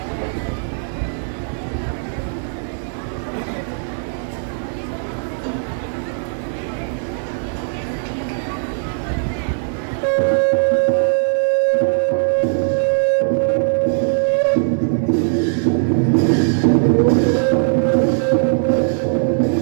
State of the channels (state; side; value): silent; left; digital silence